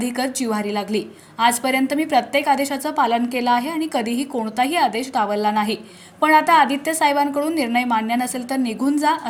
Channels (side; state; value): both; identical; correlation 1.00